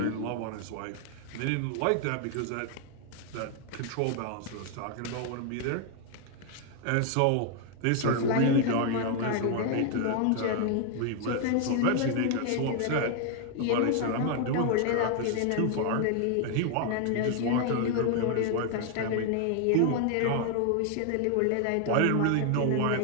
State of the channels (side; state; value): both; different; correlation 0.00